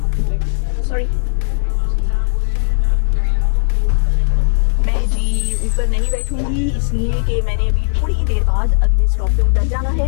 सॉरी, मैं जी ऊपर नहीं बैठूंगी इसलिए कि मैंने अभी थोड़ी ही देर बाद अगले स्टॉप पे उतर जाना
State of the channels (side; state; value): right; silent; digital silence